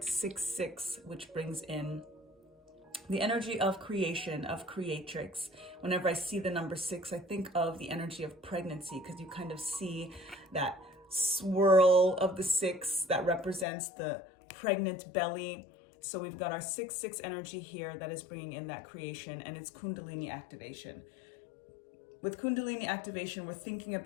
6-6, which brings in the energy of creation, of creatrix. Whenever I see the number 6, I think of the energy of pregnancy, because you kind of see that swirl of the 6 that represents the pregnant belly. So we've got our 6-6 energy here that is bringing in that creation, and it's Kundalini activation. With Kundalini activation, we're thinking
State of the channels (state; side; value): drops out; right; at 13.7 s